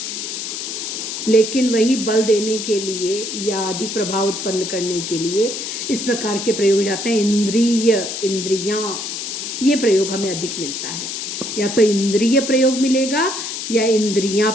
लेकिन वही बल देने के लिए या अधिक प्रभाव उत्पन्न करने के लिए इस प्रकार के प्रयोग हो जाते हैं। इंद्रिय, इंद्रियां, ये प्रयोग हमें अधिक मिलता है। या तो इंद्रिय प्रयोग मिलेगा या इंद्रियां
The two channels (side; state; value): left; noise; hiss, 5 dB below the sound